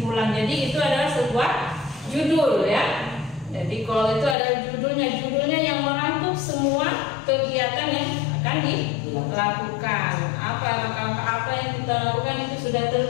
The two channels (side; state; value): right; drops out; at 4.4 s